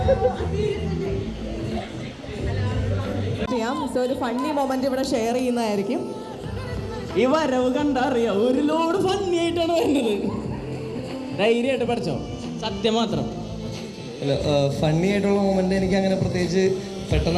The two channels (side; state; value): both; identical; correlation 1.00